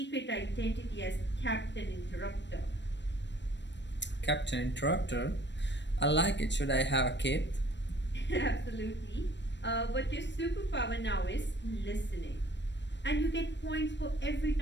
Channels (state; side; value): late; right; 0.52 ms